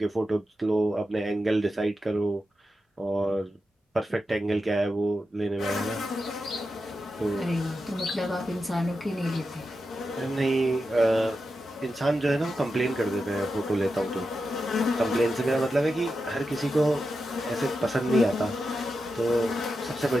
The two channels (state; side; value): normal; both; correlation 0.89